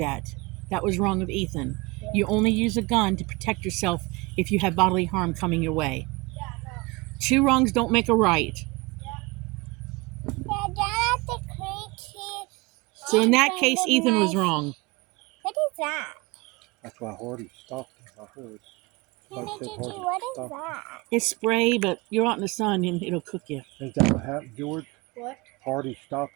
That was wrong of Ethan. Yeah. You only use a gun to protect yourself if you have bodily harm coming your way. Yeah, no. 2 wrongs don't make a right. So in that case, Ethan was wrong. What is that? That's why Hardy stopped him. I heard. Nana Like I said, Gigi, Hardy what is stopped him. that? It's spray, but you're out in the sun and it'll cook you. Ain't that what happened, George? What? Hardy stopped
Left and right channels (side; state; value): left; quieter; 24.3 dB